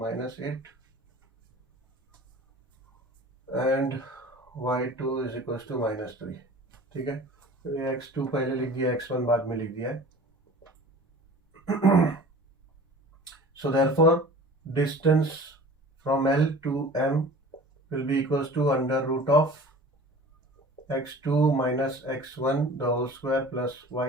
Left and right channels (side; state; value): both; normal; correlation 0.42